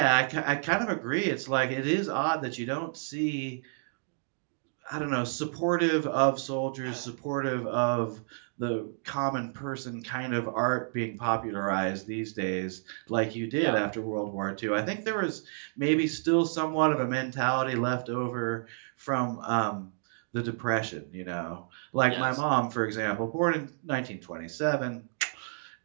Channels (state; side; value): silent; left; digital silence